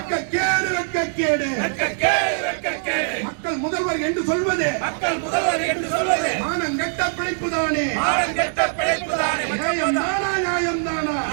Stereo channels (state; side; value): silent; left; digital silence